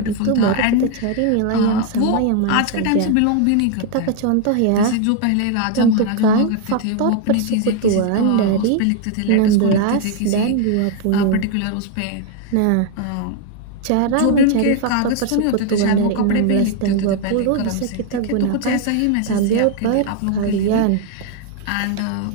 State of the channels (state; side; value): different; both; correlation 0.01